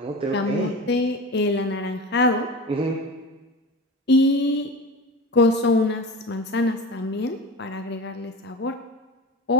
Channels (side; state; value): both; normal; correlation 0.31